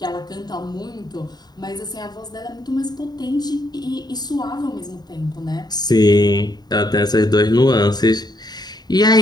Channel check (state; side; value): late; right; 0.20 ms